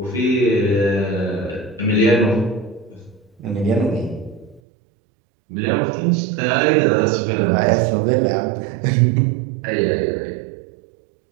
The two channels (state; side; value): drops out; left; at 4.6 s